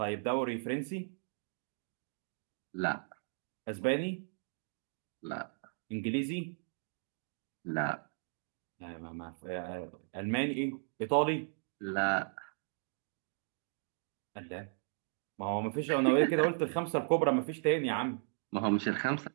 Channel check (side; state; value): left; silent; digital silence